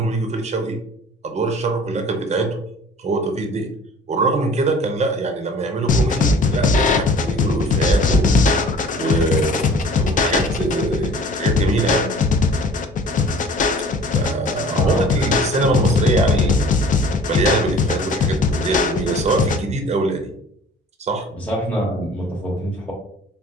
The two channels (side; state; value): both; normal; correlation 0.48